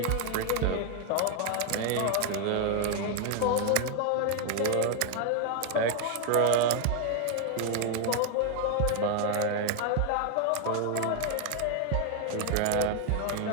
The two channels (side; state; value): both; different; correlation 0.01